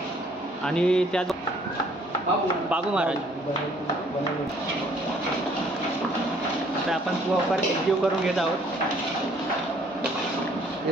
आणि त्या बाबू महाराज. आता आपण प्रॉपर एकजीव करून घेत आहोत.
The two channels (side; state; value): both; normal; correlation 0.61